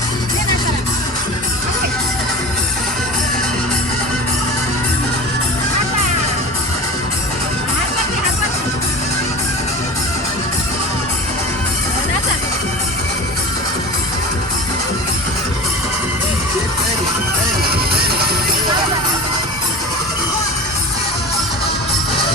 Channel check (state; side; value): normal; both; correlation 0.33